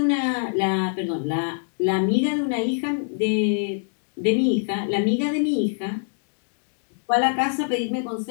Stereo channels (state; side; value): silent; right; digital silence